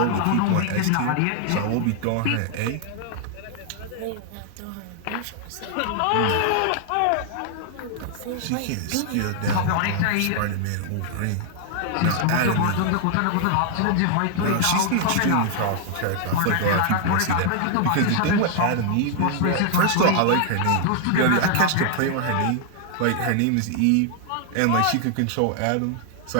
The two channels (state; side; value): different; both; correlation 0.00